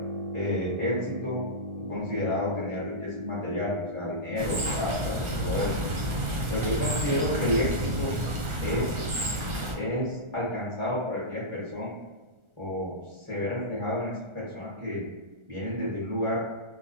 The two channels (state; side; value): late; left; 1.4 ms